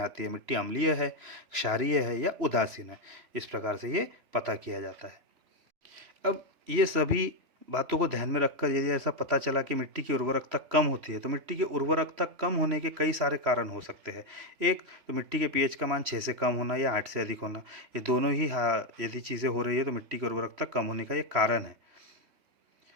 आती है, मिट्टी अम्लीय है, क्षारीय है या उदासीन है। इस प्रकार से ये पता किया जाता है। अब ये सभी बातों को ध्यान में रखकर यदि ऐसा पता चला कि मिट्टी की उर्वरकता कम होती है, तो मिट्टी की उर्वरकता कम होने के कई सारे कारण हो सकते हैं। एक तो मिट्टी के पीएच का मान 6 से कम होना या 8 से अधिक होना, ये दोनों ही यदि चीज़ें हो रही है तो मिट्टी की उर्वरकता कम होने का ये कारण है।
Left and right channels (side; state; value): left; late; 3.0 ms